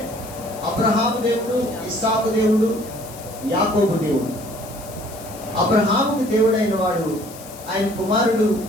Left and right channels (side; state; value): left; noise; hiss, 17 dB below the sound